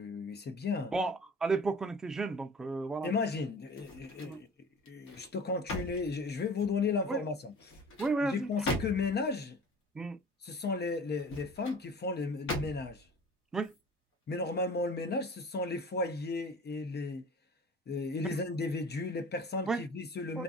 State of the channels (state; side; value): normal; both; correlation 0.43